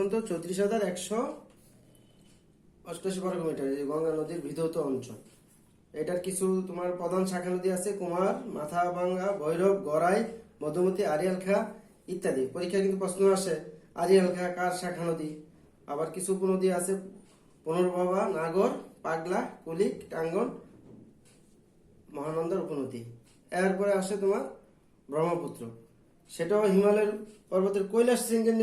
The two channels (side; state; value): both; identical; correlation 1.00